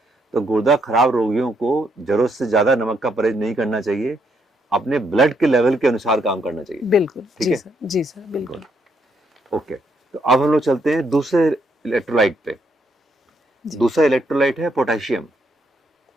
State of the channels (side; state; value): both; normal; correlation 0.74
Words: तो गुर्दा खराब रोगियों को ज़रूरत से ज़्यादा नमक का परहेज नहीं करना चाहिए, अपने ब्लड के लेवल के अनुसार काम करना चाहिए। बिल्कुल। ठीक जी है? सर, जी सर, बिल्कुल। ओके, तो अब हम लोग चलते हैं दूसरे इलेक्ट्रोलाइट पे। जी दूसरा इलेक्ट्रोलाइट है पोटेशियम,